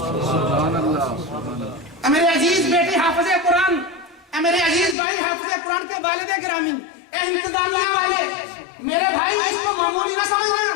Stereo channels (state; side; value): drops out; right; at 5.0 s